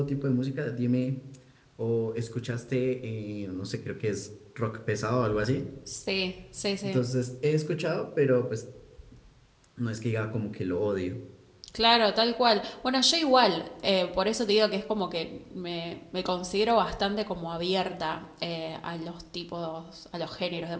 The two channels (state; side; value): identical; both; correlation 1.00